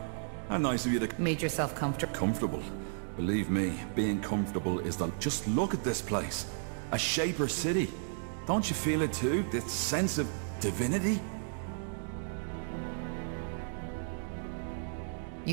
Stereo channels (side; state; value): left; silent; digital silence